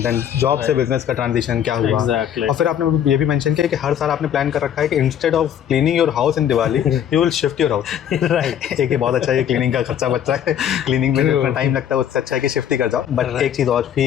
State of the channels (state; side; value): quieter; right; 9.6 dB